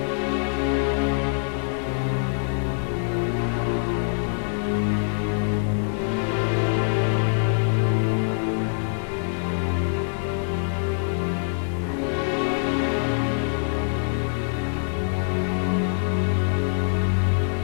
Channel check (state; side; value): silent; right; digital silence